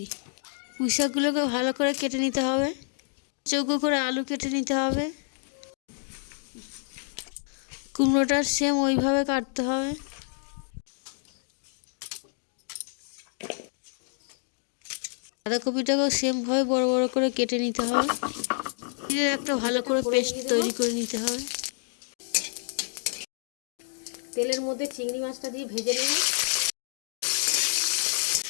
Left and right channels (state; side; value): silent; right; digital silence